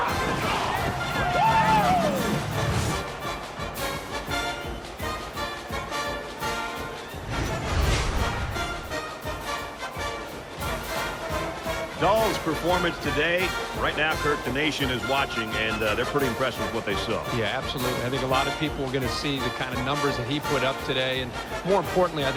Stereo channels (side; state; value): both; identical; correlation 1.00